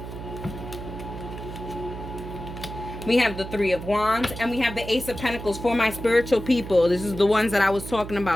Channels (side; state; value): right; noise; hum, 10 dB below the sound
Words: We have the Three of Wands, and we have the Ace of Pentacles for my spiritual people. This is the ones that I was talking